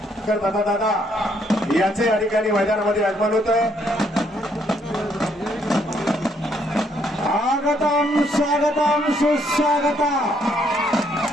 दादा याचे या ठिकाणी मैदानामध्ये आगमन होतं। स्वागतम स्वागतम सुस्वागतम।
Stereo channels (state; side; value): normal; both; correlation 0.70